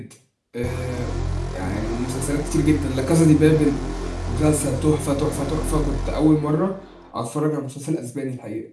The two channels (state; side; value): identical; both; correlation 1.00